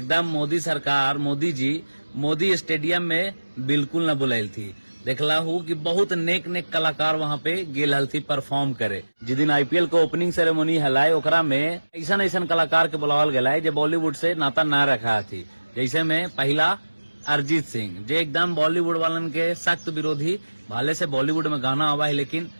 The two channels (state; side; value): inverted; both; correlation -1.00